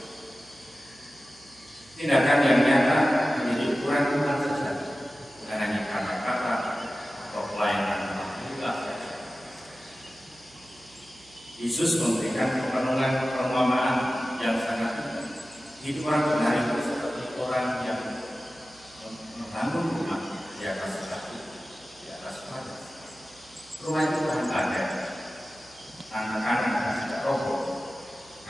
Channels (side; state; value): right; noise; hum, 28 dB below the sound